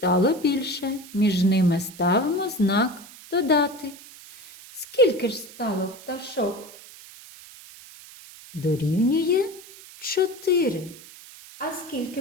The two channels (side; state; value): right; noise; hiss, 19 dB below the sound